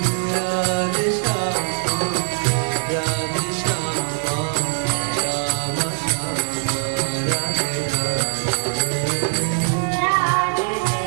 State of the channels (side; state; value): left; silent; digital silence